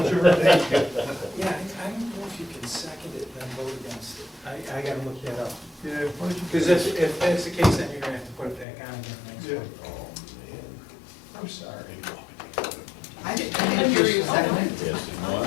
your birthday? Yeah, I don't know if you can second it, then vote against it. I gotta look that up. Yeah. Because if that's the case, then you're gonna have to put it back on again next Yeah. week. I'm sorry. I didn't hear you second it. Yes. No,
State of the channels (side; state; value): right; drops out; at 8.7 s